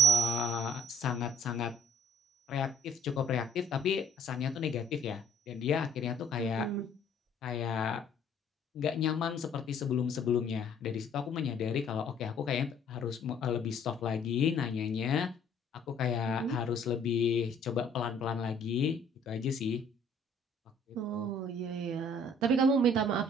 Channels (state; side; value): normal; both; correlation 0.59